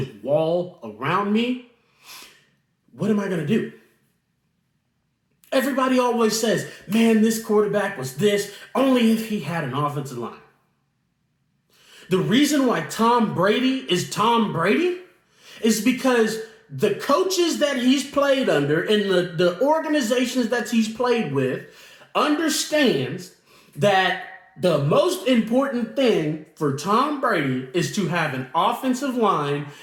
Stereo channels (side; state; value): both; identical; correlation 1.00